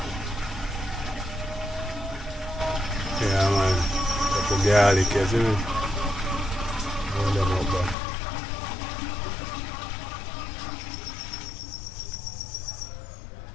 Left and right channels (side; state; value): right; drops out; at 8.0 s